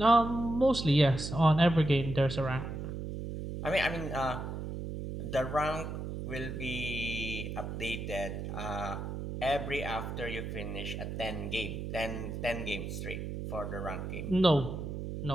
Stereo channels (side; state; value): right; noise; hum, 6 dB below the sound